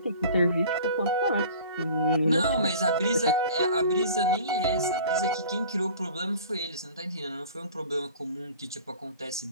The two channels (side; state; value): both; inverted; correlation -0.44